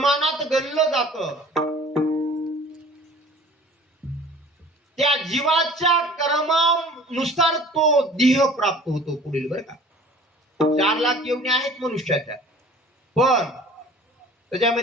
गणलं जातं. त्या जीवाच्या कर्मानुसार तो देह प्राप्त होतो पुढील, बरं का. 4 लाख येवणे आहेत मनुष्याच्या, पण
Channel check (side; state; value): both; normal; correlation 0.47